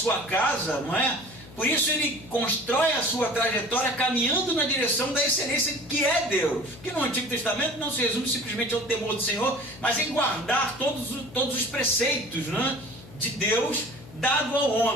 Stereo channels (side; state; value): left; noise; hum, 19 dB below the sound